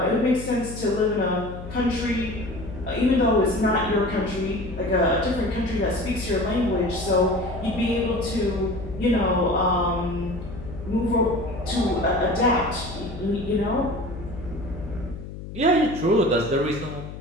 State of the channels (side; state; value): left; noise; hum, 11 dB below the sound